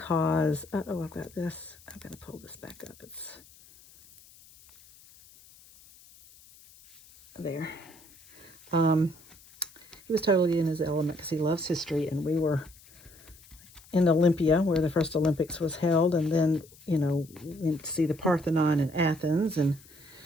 uh-oh, I've got this. I've got to pull this back up. It's there. He was totally in his element because he loves history, and we were in Olympia, where the first Olympics was held, and then, you know, went to see the Parthenon in Athens, and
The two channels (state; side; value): noise; left; hiss, 24 dB below the sound